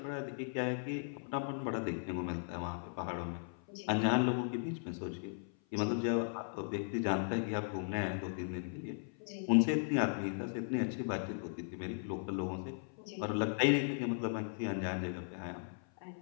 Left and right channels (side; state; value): right; silent; 53 dB below the other